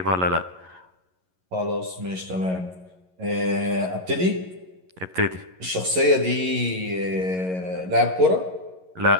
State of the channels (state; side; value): late; left; 11 ms